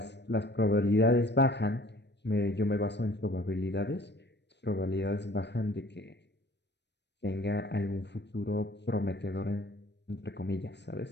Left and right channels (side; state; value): right; late; 0.50 ms